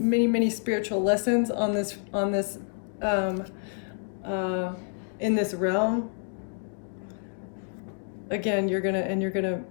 spiritual lessons on this in this realm. Again, you're gonna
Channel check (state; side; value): silent; right; 59 dB below the other